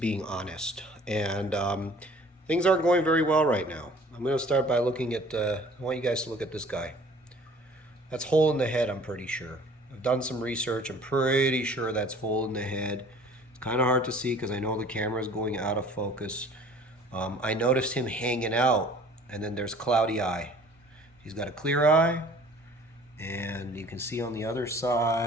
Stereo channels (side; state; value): both; normal; correlation 0.51